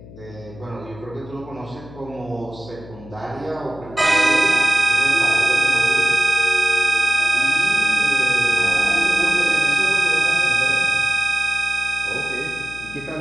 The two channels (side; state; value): left; noise; hum, 18 dB below the sound